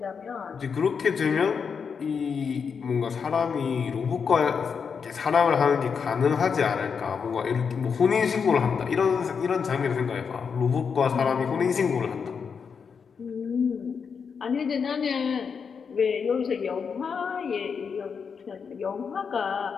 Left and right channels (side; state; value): right; quieter; 6.2 dB